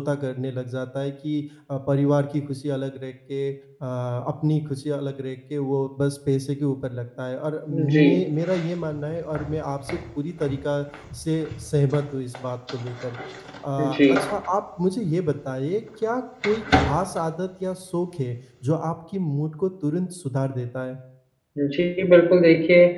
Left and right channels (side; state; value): both; identical; correlation 1.00